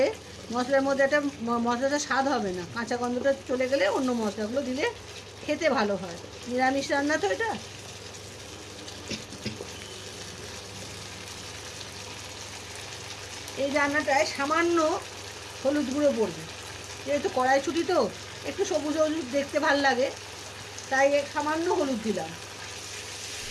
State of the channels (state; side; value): identical; both; correlation 1.00